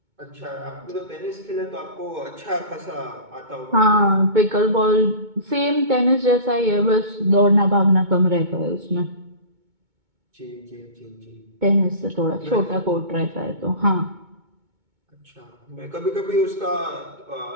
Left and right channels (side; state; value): left; late; 2.2 ms